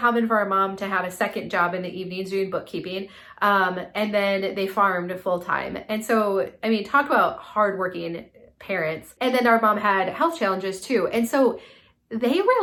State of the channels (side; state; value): both; identical; correlation 1.00